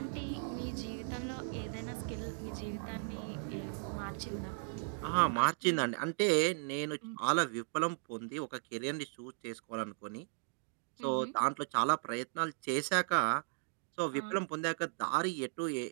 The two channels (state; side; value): silent; left; digital silence